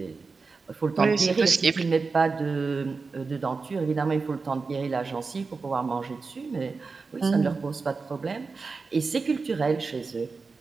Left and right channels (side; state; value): left; quieter; 4.4 dB